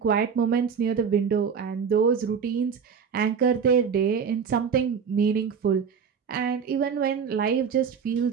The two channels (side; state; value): left; quieter; 6.6 dB